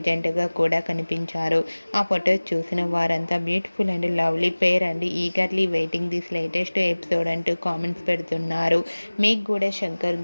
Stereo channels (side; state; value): both; inverted; correlation -1.00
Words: జంటగా కూడా కనిపించారు. ఆ ఫొటోస్ చూసిన వారంతా beautiful and lovely pair and eagerly waiting this latest episode అంటూ కామెంట్స్ పెడుతున్నారు. మీకు కూడా Shankar